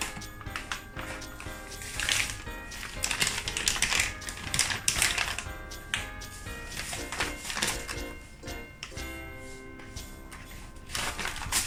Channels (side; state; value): both; identical; correlation 1.00